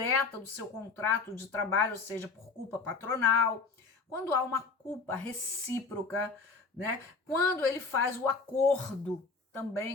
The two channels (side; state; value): right; quieter; 4.4 dB